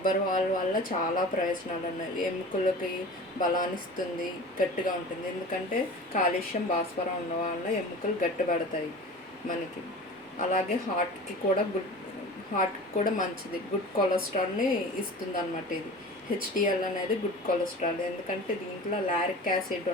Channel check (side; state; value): both; normal; correlation 0.37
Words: పాలు వల్ల చాలా ప్రయోజనాలు ఉన్నాయి. ఎముకలకి బలాన్నిస్తుంది, గట్టిగా ఉంటుంది. ఎందుకంటే కాల్షియం, భాస్వరం ఉండడం వల్ల ఎముకలు గట్టిపడతాయి మనకి. అలాగే హార్ట్కి కూడా మంచిది. గుడ్ కొలెస్ట్రాల్ని ఇస్తుంది అన్నమాట. ఇది హెచ్డిఎల్ అనేది గుడ్ కొలెస్ట్రాల్. ఎందుకంటే దీంట్లో లారిక్ యాసిడ్